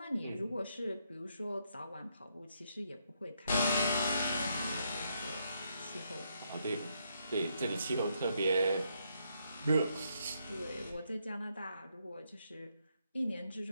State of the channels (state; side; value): inverted; both; correlation -0.76